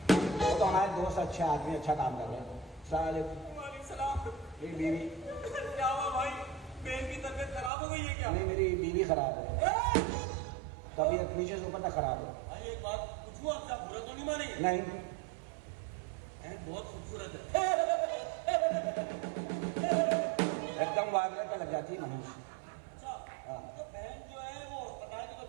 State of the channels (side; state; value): left; drops out; at 7.7 s